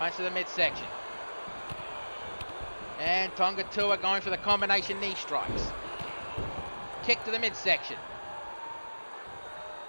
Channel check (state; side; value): inverted; both; correlation -1.00